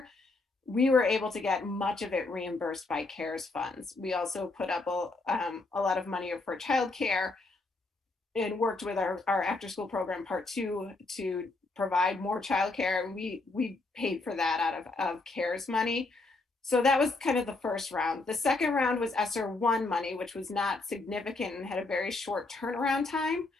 we were able to get much of it reimbursed by CARES funds. We also put up a lot of money for childcare and worked with our after school program part 2 to provide more childcare. And we paid for that out of CARES money. So that was kind of the first round. The second round was ESSER 1 money, which was not significant and had a very short turnaround time,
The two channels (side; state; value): right; quieter; 3.4 dB